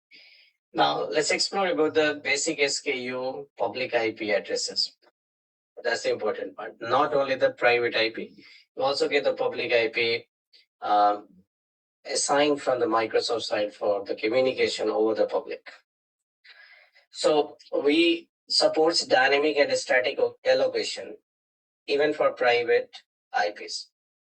Now let's explore about the basic SKU public IP addresses. That's the important part. Not only the private IP, you also get the public IP assigned from the Microsoft side for the communication over the public. So we supports dynamic and static allocation even for private IPs.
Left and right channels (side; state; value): both; identical; correlation 1.00